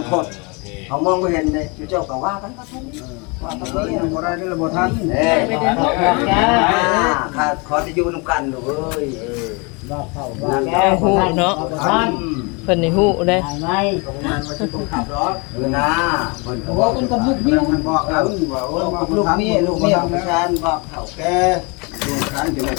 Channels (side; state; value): right; quieter; 30.2 dB